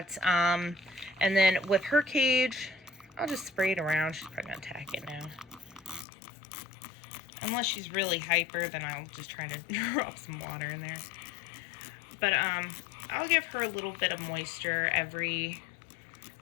And then with her cage, I'll just spray it around. She's probably gonna attack it now. Unless she's really hyper, then I'll just try to drop some water in there. But I'll give her a little bit of moisture every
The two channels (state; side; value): drops out; right; at 6.1 s